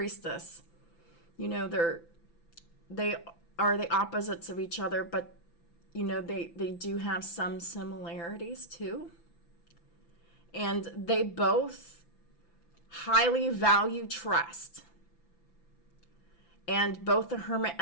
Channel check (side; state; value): right; late; 5.9 ms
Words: you know, they are the opposites of each other, but, you know, they do have some similarities too. And they both highly value trust. And both the Hermit